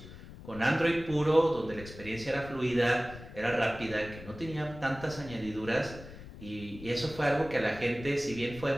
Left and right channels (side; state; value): left; noise; rumble, 15 dB below the sound